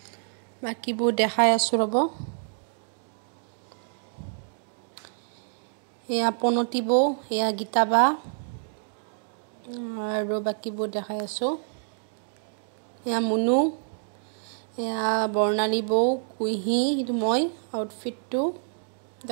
বাকিবোৰ দেখাই আছো ৰব। এয়া পনতিব, এয়া গীতাবা আৰু বাকিবোৰ দেখাই আছো। এয়া মুনু, এয়া বৰ্ণালী বৌ, কুইহি, এইটো মই আউটফিটটো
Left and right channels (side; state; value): left; silent; digital silence